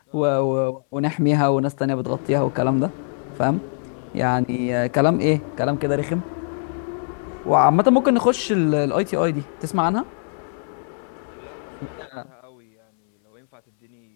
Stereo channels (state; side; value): silent; right; 64 dB below the other